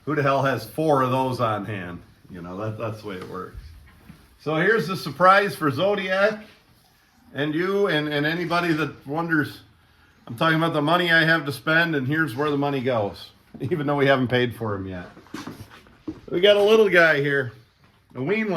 who the hell has 4 of those on hand? That's the way it works. So here's the surprise for Zodiac and you and anybody that wonders. I'm talking about the money I have to spend, and here's where the money goes, even though we haven't paid for him yet. We got a little guy here, a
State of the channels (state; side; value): identical; both; correlation 1.00